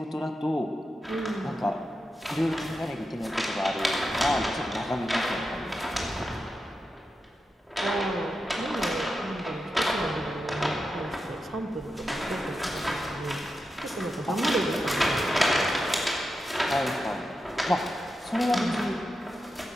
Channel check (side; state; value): both; normal; correlation 0.89